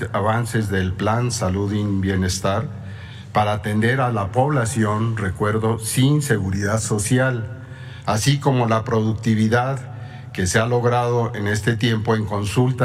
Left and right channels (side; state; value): both; identical; correlation 1.00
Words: avances del Plan Salud y Bienestar para atender a la población, recuerdo, sin seguridad social, así como la productividad que se ha logrado en este tiempo en